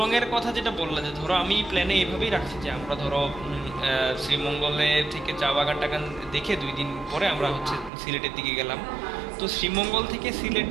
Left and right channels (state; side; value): drops out; left; at 7.9 s